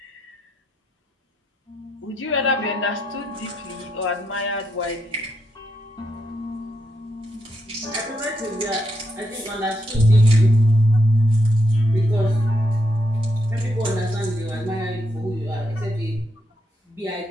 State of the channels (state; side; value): normal; both; correlation 0.80